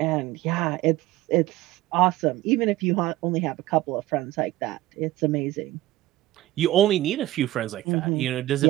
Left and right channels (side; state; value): left; quieter; 16.2 dB